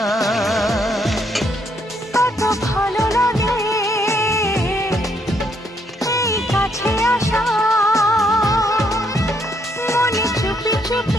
কত ভালো লাগে এই কাছে আসা, মনে চুপি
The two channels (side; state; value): both; normal; correlation 0.72